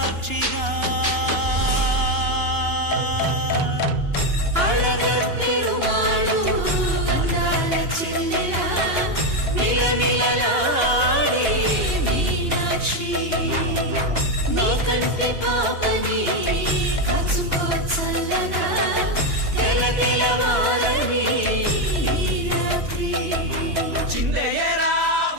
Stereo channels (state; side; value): late; left; 2.9 ms